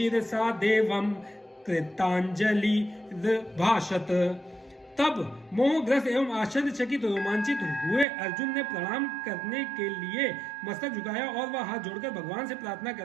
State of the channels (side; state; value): left; drops out; at 8.1 s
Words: देवम कृतांजलि भाषत। तब मोहग्रस्त एवं आश्चर्यचकित रोमांचित हुए अर्जुन ने प्रणाम करने के लिए मस्तक झुकाया और वह हाथ जोड़कर भगवान से प्रार्थना